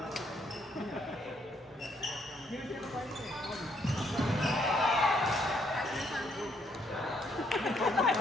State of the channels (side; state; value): both; normal; correlation 0.71